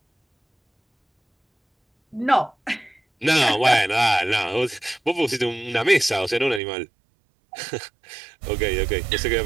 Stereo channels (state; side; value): drops out; left; at 6.6 s